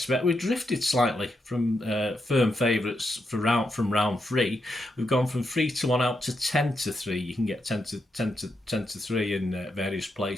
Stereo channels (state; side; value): normal; both; correlation 0.83